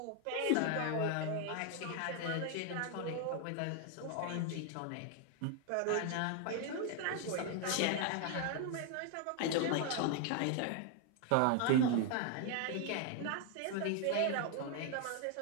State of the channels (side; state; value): both; different; correlation 0.00